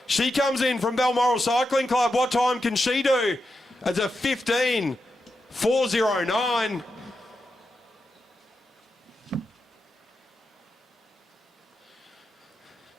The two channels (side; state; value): both; normal; correlation 0.87